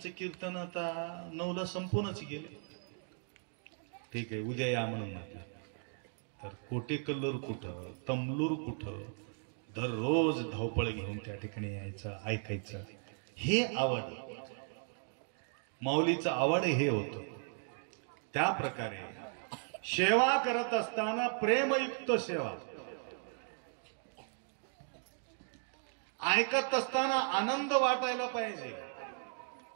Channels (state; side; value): silent; left; 53 dB below the other